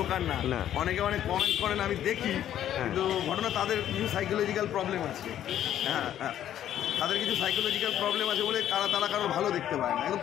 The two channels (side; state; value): right; quieter; 11.2 dB